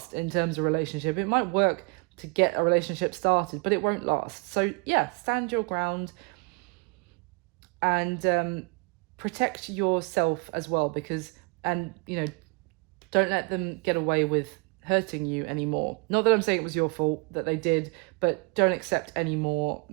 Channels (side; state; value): left; quieter; 31.0 dB